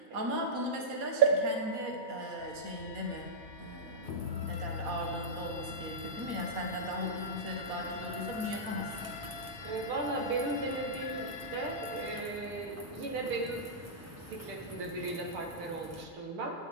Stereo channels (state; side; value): normal; both; correlation -0.15